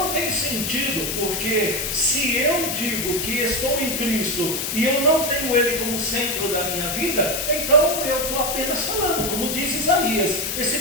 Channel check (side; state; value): left; noise; hiss, 2 dB below the sound